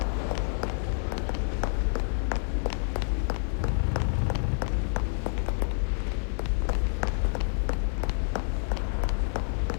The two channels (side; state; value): right; silent; digital silence